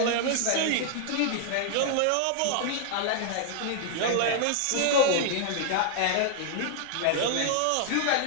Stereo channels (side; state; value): both; different; correlation 0.00